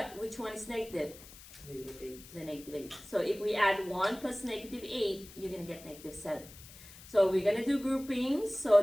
which one is negative? Negative 8. The negative 8. So if we add 1 plus negative 8, you're going to get negative 7. So we're going to do groupings. So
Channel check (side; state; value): left; noise; hiss, 18 dB below the sound